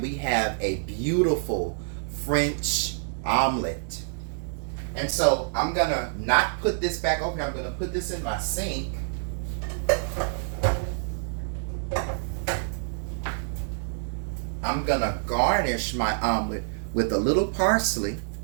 we have a beautiful French omelet. And so I'm going to not put this back over here. I'm going to put this in my sink. I'm going to garnish my omelet with a little parsley.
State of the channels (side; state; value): left; silent; digital silence